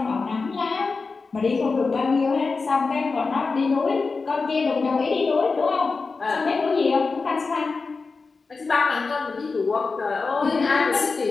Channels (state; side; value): quieter; right; 4.3 dB